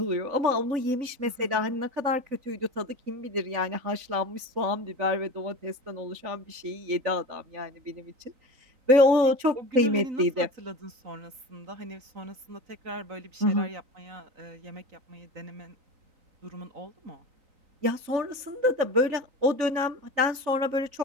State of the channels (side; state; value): left; late; 3.5 ms